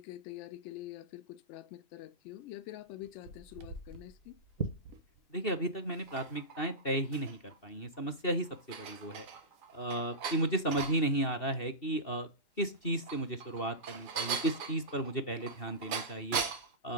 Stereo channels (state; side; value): late; right; 2.7 ms